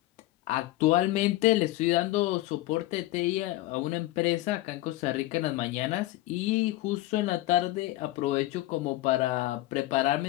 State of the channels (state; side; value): quieter; right; 17.1 dB